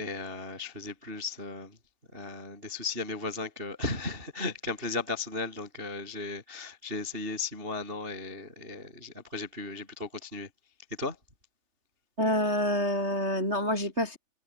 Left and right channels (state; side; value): late; left; 3.3 ms